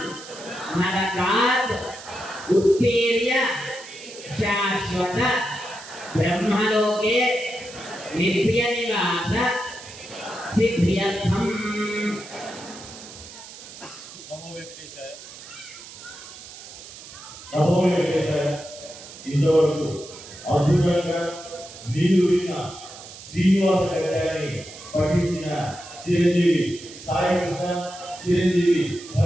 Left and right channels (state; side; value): noise; right; hiss, 15 dB below the sound